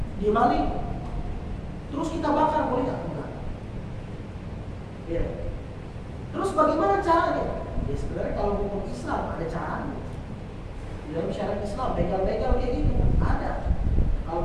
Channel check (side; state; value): both; identical; correlation 1.00